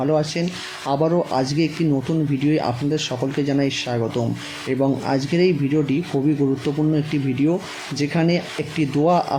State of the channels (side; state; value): both; identical; correlation 1.00